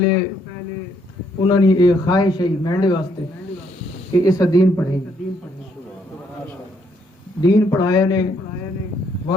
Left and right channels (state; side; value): normal; both; correlation 0.71